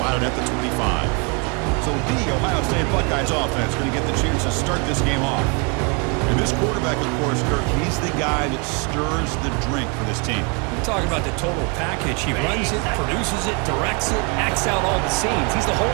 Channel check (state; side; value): quieter; left; 33.9 dB